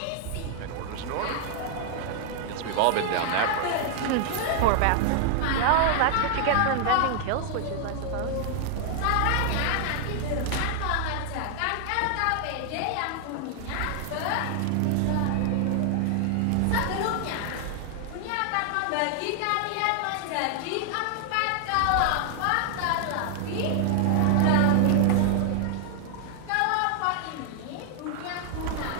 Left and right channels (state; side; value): different; both; correlation 0.00